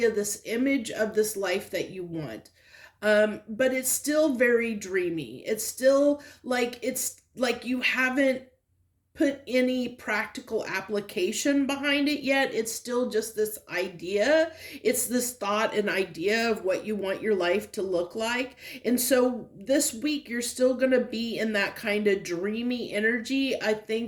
this image of this life that you want. But it's still very dreamy. It's like you haven't put any practical application behind it yet. It's still just this idea. It's this thought and idea of what you want your life to look like. And so this week, you're still going to be in that kind of dreamy energy. I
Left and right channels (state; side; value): identical; both; correlation 1.00